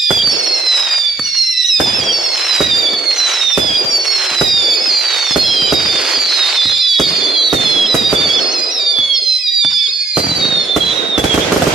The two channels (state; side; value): quieter; left; 3.7 dB